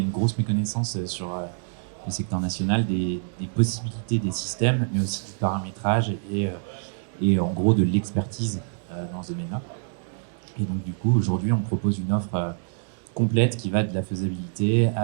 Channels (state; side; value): silent; left; 61 dB below the other